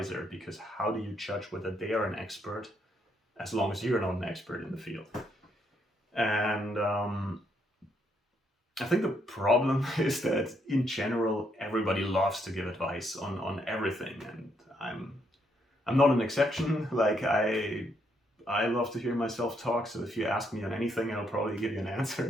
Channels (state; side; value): normal; both; correlation 0.74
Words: because how do you judge whether they are an expert as long as you're not an expert in the field? And I think the problem is that in general, everybody loves to give advice on everything, and I'm not an exception. Like I love to hear myself talk, so if you ask me on anything, I'll probably give you an